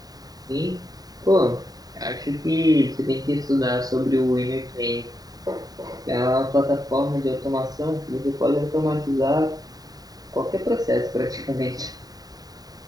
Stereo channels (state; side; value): late; left; 0.18 ms